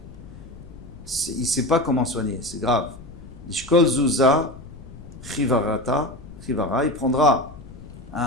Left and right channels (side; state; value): left; noise; rumble, 16 dB below the sound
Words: Il sait pas comment soigner, c'est grave. L'ishkol zuza chivara, il prendra